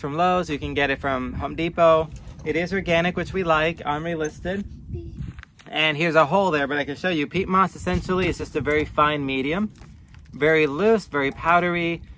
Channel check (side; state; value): both; identical; correlation 1.00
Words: Lowe's. You can get it from Home Depot. It is organic, which we like, OMRI listed. And here's a hole there, but I can show you. Peat moss essentially is just a very fine medium. Very loose, very powdery.